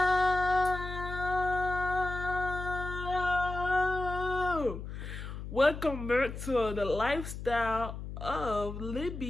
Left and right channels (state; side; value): noise; left; hum, 8 dB below the sound